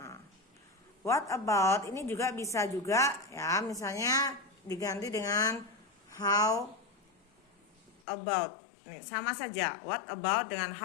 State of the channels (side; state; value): right; drops out; at 8.0 s